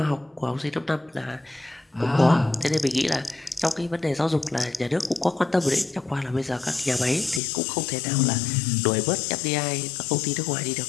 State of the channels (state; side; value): drops out; right; at 7.4 s